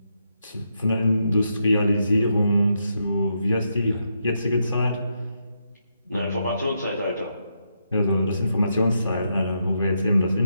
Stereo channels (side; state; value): both; inverted; correlation -0.81